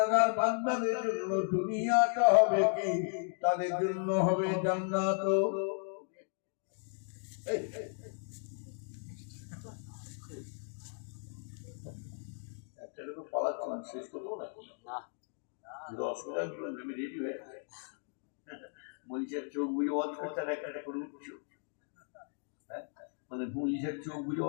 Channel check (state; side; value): silent; right; 54 dB below the other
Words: বান্দাদের জন্য দুনিয়াটা হবে কি, তাদের জন্য হবে জান্নাত। একটা এরকম পালাচ্ছিলাম, শেষ করবো নাকি? অসুবিধা আমি রেডি হয়ে আছে, মনীষার চোখ বুঝে ওয়াজ করছে আর একটা করে উঠছ, হ্যাঁ, মানে মনীষার চোখ বুঝে